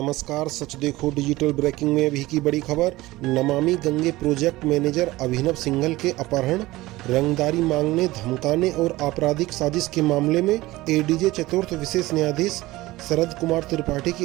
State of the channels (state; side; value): quieter; left; 18.6 dB